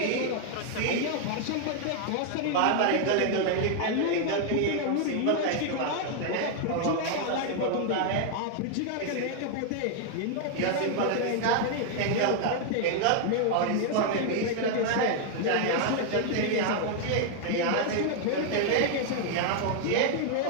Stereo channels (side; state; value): both; different; correlation 0.00